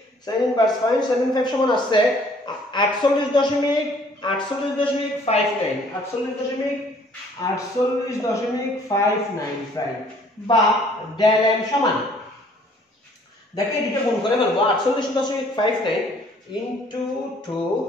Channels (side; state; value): both; normal; correlation 0.58